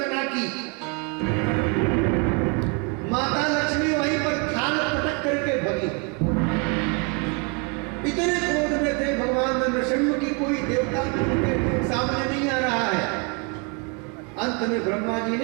की, माता लक्ष्मी वहीं पर थाल पटक करके भगी। इतने क्रोध में थे भगवान नृसिंह की कोई देवता उनके सामने नहीं आ रहा है। अंत में ब्रह्मा जी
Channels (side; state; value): left; quieter; 32.7 dB